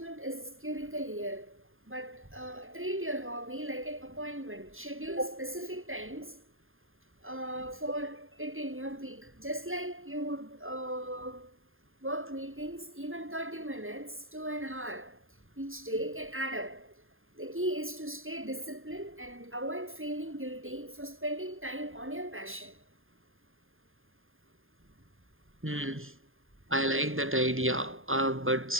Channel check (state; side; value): late; left; 0.59 ms